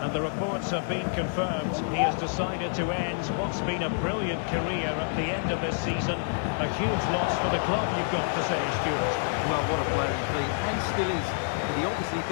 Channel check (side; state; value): right; silent; digital silence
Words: and the reports have been confirmed. He has decided to end what's been a brilliant career at the end of this season. A huge loss for the club, you've got to say, Stuart. Well, what a player he's been, and still is. He obviously